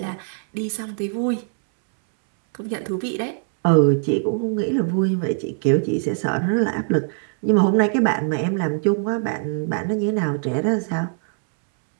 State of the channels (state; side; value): silent; left; 64 dB below the other